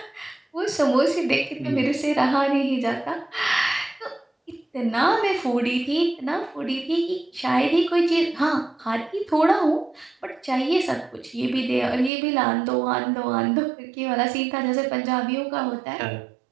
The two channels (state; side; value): drops out; left; at 12.1 s